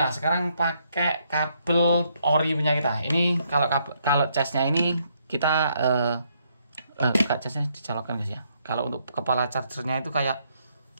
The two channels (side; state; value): both; inverted; correlation -0.73